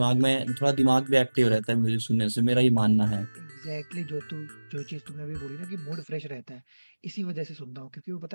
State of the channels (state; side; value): inverted; both; correlation -1.00